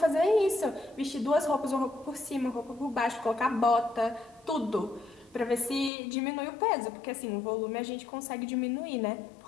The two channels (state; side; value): drops out; right; at 5.9 s